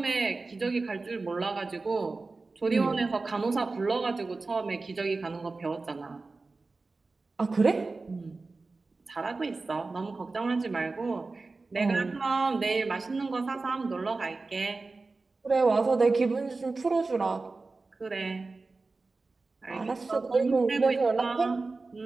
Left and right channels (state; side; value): quieter; left; 3.7 dB